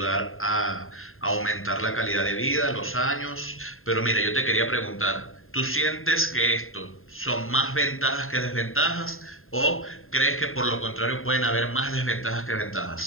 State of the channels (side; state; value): right; late; 0.61 ms